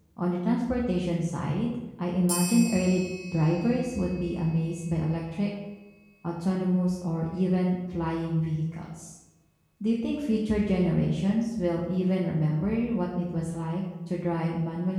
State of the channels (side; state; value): both; identical; correlation 1.00